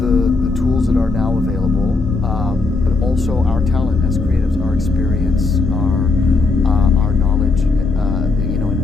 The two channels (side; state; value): right; quieter; 3.7 dB